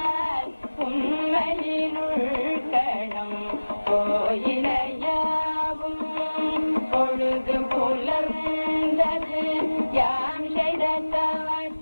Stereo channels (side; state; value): both; inverted; correlation -1.00